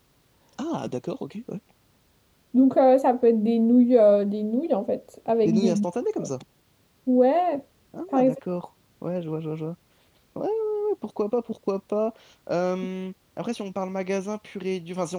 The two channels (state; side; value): identical; both; correlation 1.00